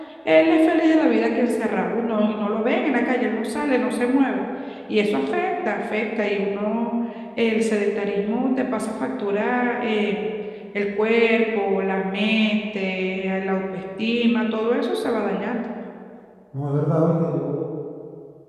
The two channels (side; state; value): both; identical; correlation 1.00